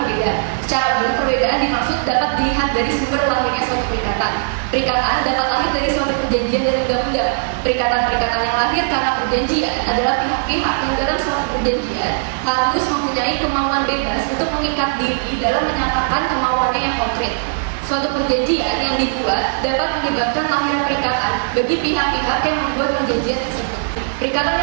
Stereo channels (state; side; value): silent; left; 64 dB below the other